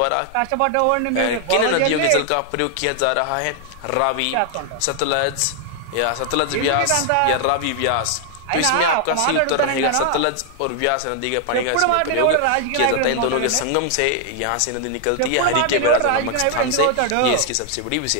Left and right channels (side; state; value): both; different; correlation 0.00